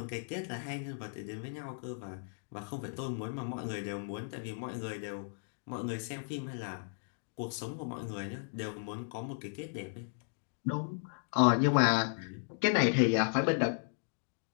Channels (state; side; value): silent; right; digital silence